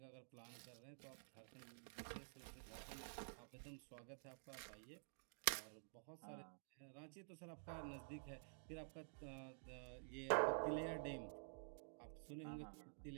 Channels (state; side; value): silent; left; digital silence